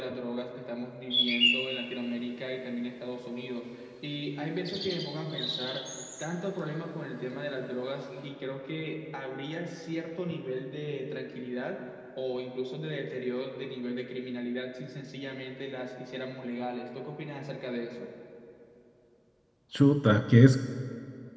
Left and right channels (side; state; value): both; identical; correlation 1.00